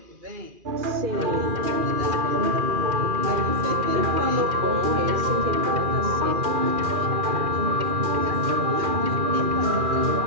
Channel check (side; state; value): left; late; 2.4 ms